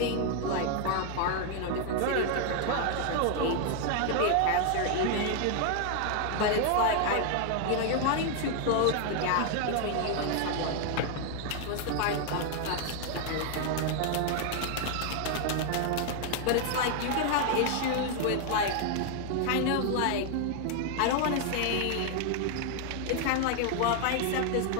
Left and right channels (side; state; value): both; different; correlation 0.00